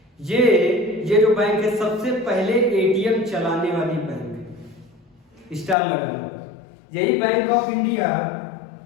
ये जो बैंक है सबसे पहले ATM चलाने वाली बैंक है, स्टार लगा लो। यही बैंक ऑफ इंडिया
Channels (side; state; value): right; drops out; at 5.8 s